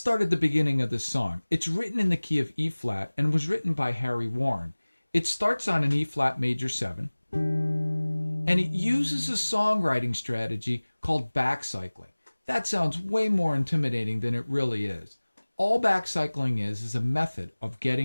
at the beginning of this song. It's written in the key of E flat and was written by Harry Warren. It starts on an E flat major 7, and it uses a songwriting strategy called backcycling. That sounds way more intimidating than it really is. All backcycling is a method of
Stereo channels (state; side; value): inverted; both; correlation -1.00